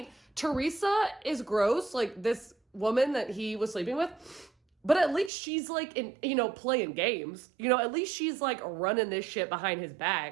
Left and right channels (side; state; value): left; drops out; at 5.3 s